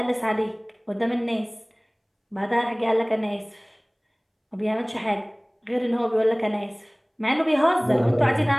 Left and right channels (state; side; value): identical; both; correlation 1.00